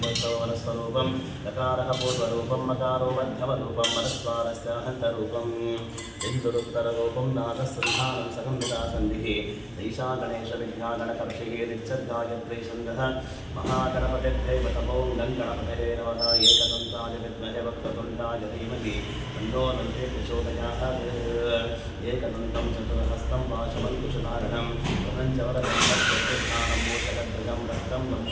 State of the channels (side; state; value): both; identical; correlation 1.00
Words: वनस्वरूपं लकारः पूर्वरूपं मकारो मध्यमरूपं मनस्वारस्य हन्तरूपम् इन्दुरुत्तररूपं नादसन्धानं सगम्भिदासन्धिः ईशा गणेशविद्यागणकर्षिः नित्यगायत्री छन्दः महागणपतिर्दैवतमो गणपतये नमः एकदन्ताय विद्महे वक्रतुण्डाय धीमहि तन्नो दन्ते प्रचोदयात् एकदन्तं चतुर्हस्तं पाशमङ्कुशधारणं प्रपञ्चवरदं रक्तस्थानं मोचकध्वजं रक्तं